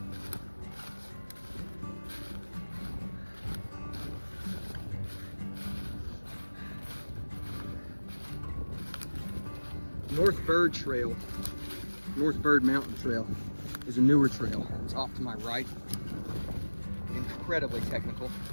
North Bird Mountain Trail is a newer trail. It's off to my right. Incredibly technical.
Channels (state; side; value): inverted; both; correlation -1.00